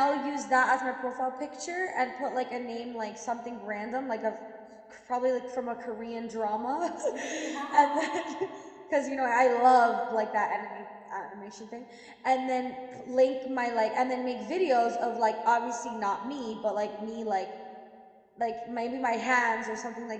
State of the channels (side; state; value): both; identical; correlation 1.00